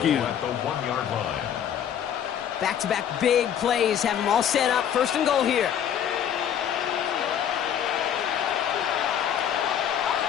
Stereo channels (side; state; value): right; quieter; 9.3 dB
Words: At the 1-yard line. Back-to-back big plays have them all set up. First and goal here.